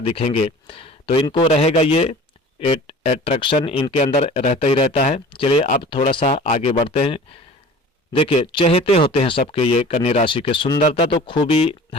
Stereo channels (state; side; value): normal; both; correlation 0.43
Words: दिखेंगे। तो इनको रहेगा ये एट्रैक्शन इनके अंदर रहता ही रहता है। चलिए अब थोड़ा सा आगे बढ़ते हैं। देखिए, चहेते होते हैं सबके ये कन्या राशि के। सुंदरता तो खूबी